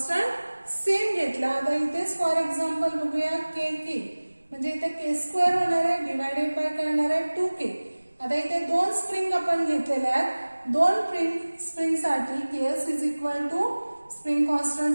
सेम घेतला. आता इथेच फॉर एक्झाम्पल बघूया के के म्हणजे इथे के स्क्वेअर होणार आहे डिवायडेड बाय काय होणार आहे 2k. आता इथे दोन स्प्रिंग आपण घेतलेले आहेत. दोन स्प्रिंग साठी KS is equal to spring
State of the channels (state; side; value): inverted; both; correlation -1.00